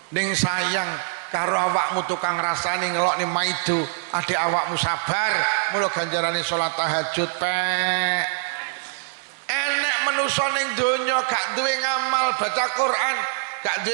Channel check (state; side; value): silent; left; digital silence